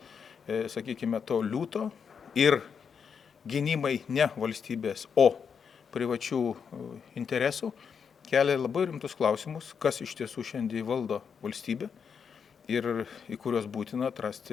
sakykime, to liūto ir gynimai ne valstybės, o privačių interesų, kelia labai rimtus klausimus, kas iš tiesų šiandien valdo valstybę ir į kuriuos būtina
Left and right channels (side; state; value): right; quieter; 6.6 dB